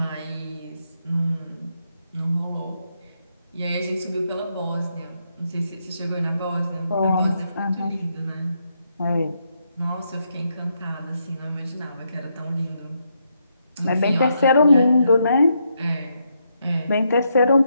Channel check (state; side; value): inverted; both; correlation -0.79